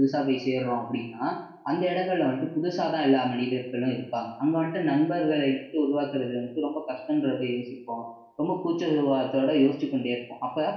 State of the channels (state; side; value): identical; both; correlation 1.00